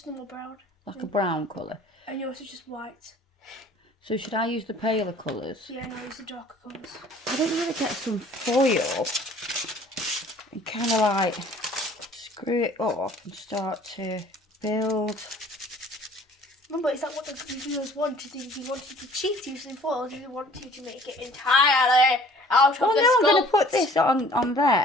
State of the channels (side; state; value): both; normal; correlation 0.52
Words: normal brown. Like a brown colour. And yours is just white. So should I use the paler colours? Yeah, no, use the darker colours. I don't want to get some foil and kind of like screw it up and start to build. Remember, is that what the reviewers wanted? Did you wanted to cheat using foil, or did you want you to make it entirely out of the I'm going to sculpt? put this on